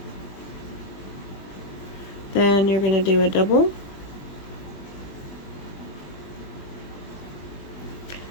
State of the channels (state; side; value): late; right; 21 ms